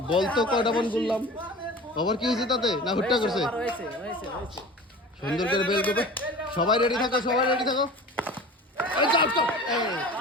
বল তো কয়টা বল করলাম ওভার কি হয়েছে তাতে না হুট্টা করছে সুন্দর করে বেল করবে সবাই রেডি থাকো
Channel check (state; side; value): normal; both; correlation 0.38